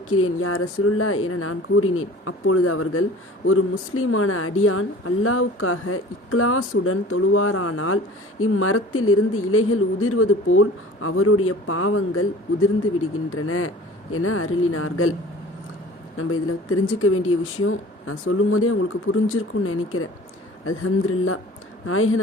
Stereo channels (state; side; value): normal; both; correlation 0.44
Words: யா ரசூலுல்லாஹ் என நான் கூறினேன். அப்பொழுது அவர்கள், ஒரு முஸ்லிமான அடியான் அல்லாஹ்வுக்காக இக்லாசுடன் தொழுவாரானால் இம்மரத்தில் இருந்து இலைகள் உதிர்வது போல் அவருடைய பாவங்கள் உதிர்ந்து விடுகின்றன என அருளினார்கள். நம்ம இதில் தெரிஞ்சுக்க வேண்டிய விஷயம் நான் சொல்லும் போதே உங்களுக்கு புரிஞ்சிருக்கும்னு நினைக்கிறேன். அல்ஹம்துலில்லாஹ்.